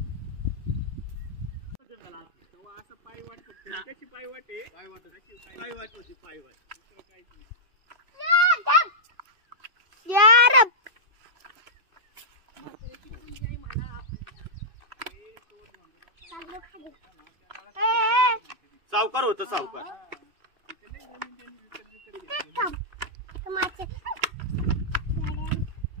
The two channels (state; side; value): late; left; 2.6 ms